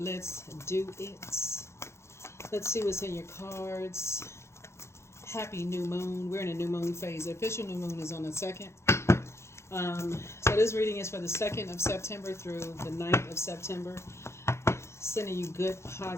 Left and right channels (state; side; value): late; right; 0.13 ms